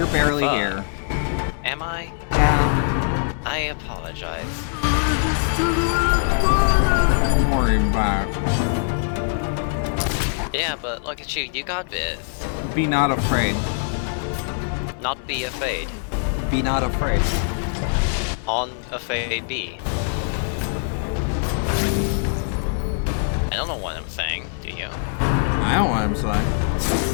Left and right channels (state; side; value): silent; right; digital silence